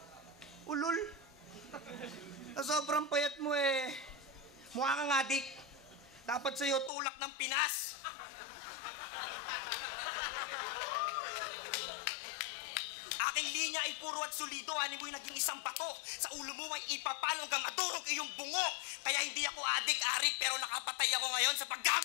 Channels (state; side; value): drops out; right; at 6.9 s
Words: Ulul. Sobrang payat mo eh. Mukha kang adik. Dapat sa'yo tulak ng Pinas. Aking linya ay puro at solido. Ano mo'y naging isang bato. Sa ulo mo ay ipapalo hanggang madurog iyong bungo. Kaya hindi ako adik-arik pero nakapatay ako ngayon sa